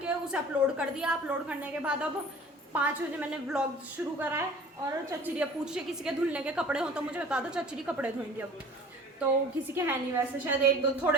उसे अपलोड कर दिया। अपलोड करने के बाद अब 5 बजे मैंने व्लॉग शुरू करा है। और चचरी पूछ रही किसी के धुलने के कपड़े हो तो मुझे बता दो, चचरी कपड़े धोएंगे अब। तो किसी के है नहीं वैसे, शायद 1-2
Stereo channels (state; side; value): normal; both; correlation 0.45